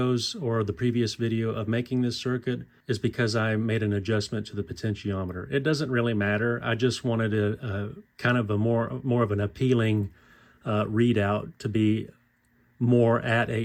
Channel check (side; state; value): both; identical; correlation 1.00